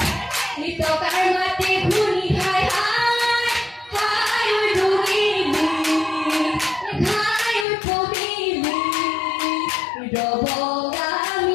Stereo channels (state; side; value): drops out; right; at 7.7 s